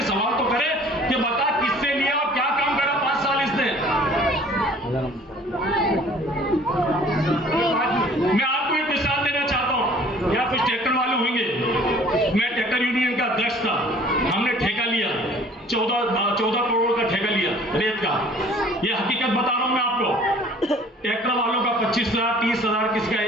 सवाल तो करें कि बता किससे लिया और क्या काम करा 5 साल इसने। मैं आपको एक मिसाल देना चाहता हूं। यहाँ कुछ ट्रैक्टर वाले होंगे, मैं ट्रैक्टर यूनियन का अध्यक्ष था। हमने ठेका लिया, 14 करोड़ का ठेका लिया रेत का। ये हकीकत बता रहा हूं मैं आपको। ट्रैक्टर वालों का 25,000, 30,000, किसी का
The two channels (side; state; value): both; normal; correlation 0.52